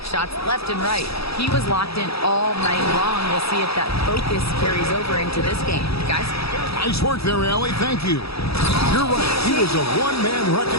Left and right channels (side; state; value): right; late; 0.77 ms